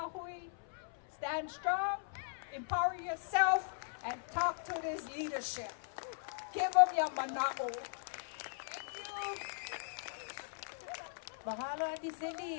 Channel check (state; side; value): silent; right; 52 dB below the other